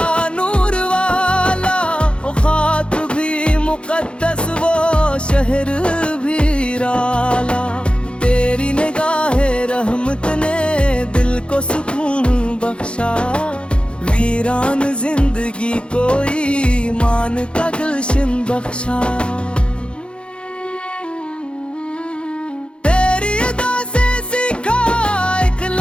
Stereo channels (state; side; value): late; right; 0.056 ms